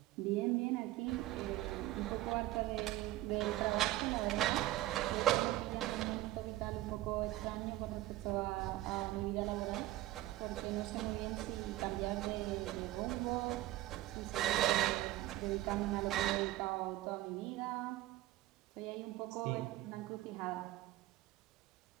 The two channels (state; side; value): quieter; left; 16.2 dB